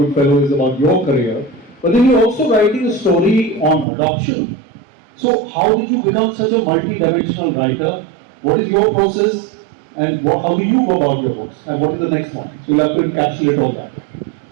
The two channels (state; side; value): drops out; left; at 3.9 s